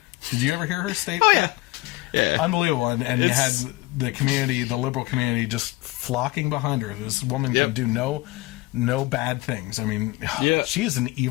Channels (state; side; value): quieter; right; 21.0 dB